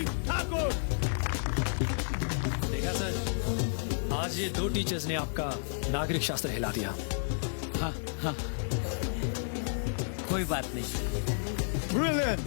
आज ये 2 teachers ने आपका नागरिक शास्त्र हिला दिया। हाँ हाँ, कोई बात नहीं। Brilliant,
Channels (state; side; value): silent; right; 56 dB below the other